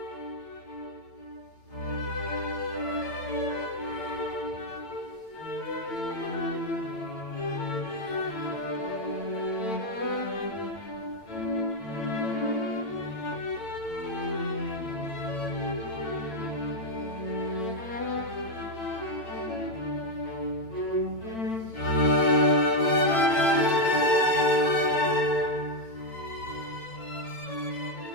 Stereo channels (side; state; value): right; late; 8.9 ms